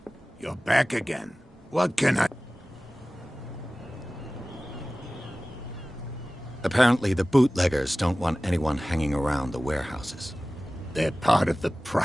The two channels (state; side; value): normal; both; correlation 0.97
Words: You're back again. What can I... Apparently the bootleggers don't want anyone hanging around the warehouses. They're part of the